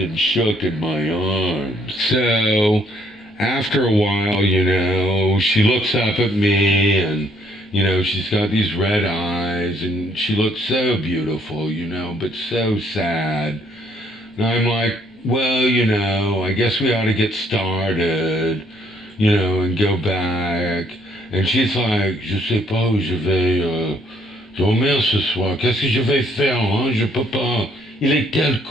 shook in my arms. So, after a while, you know, she looks up at me, and, you know, she's got these red eyes, and she looks so beautiful, you know, but so sad. And I'm like, well, you know, I guess we ought to get started, you know, and go back. And she's like, je sais pas où je vais dormir ce soir. Qu'est-ce que je vais faire, hein? Je peux pas. Il est tel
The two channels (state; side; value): normal; both; correlation 0.66